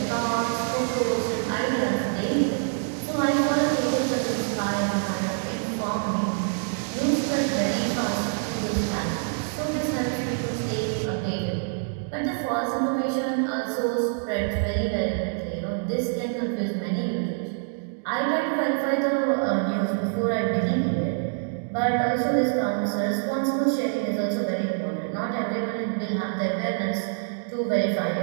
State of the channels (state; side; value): silent; left; 59 dB below the other